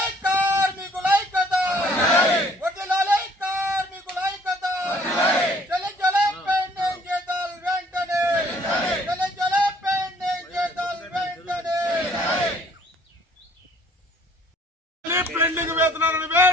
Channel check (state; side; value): normal; both; correlation 0.58